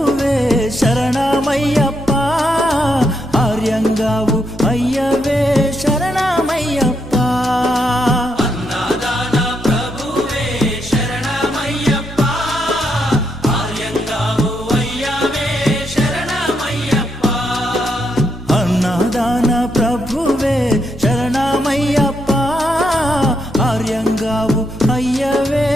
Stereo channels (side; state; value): both; normal; correlation 0.79